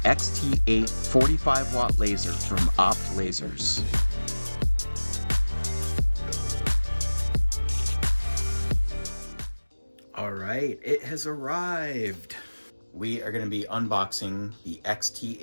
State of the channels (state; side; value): inverted; both; correlation -1.00